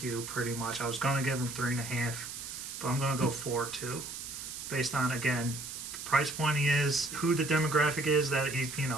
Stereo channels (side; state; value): right; noise; hiss, 8 dB below the sound